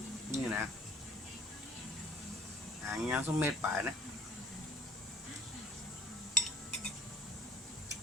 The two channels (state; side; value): normal; both; correlation 0.48